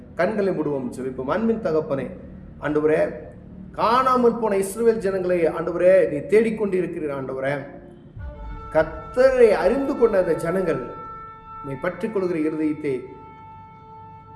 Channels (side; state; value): both; identical; correlation 1.00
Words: கண்களை மூடுவோம் ஜெபிப்போம். அன்பின் தகப்பனே, ஆண்டவரே, காணாமல் போன இஸ்ரவேல் ஜனங்களை ஆண்டவரே நீ தேடிக்கொண்டிருக்கிறீர். ஆண்டவரே, கர்த்தரை அறிந்து கொண்ட அந்த ஜனங்கள் உம்மை பற்றிக் கொள்கிற இருதயத்தை